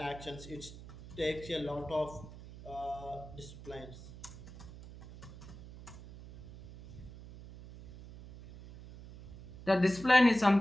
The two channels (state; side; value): noise; right; hum, 15 dB below the sound